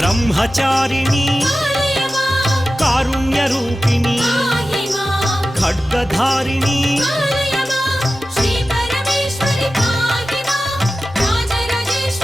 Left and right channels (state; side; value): normal; both; correlation 0.94